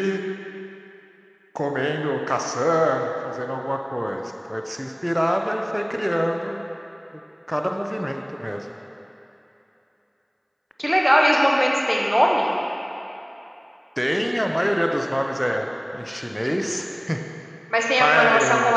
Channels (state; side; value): identical; both; correlation 1.00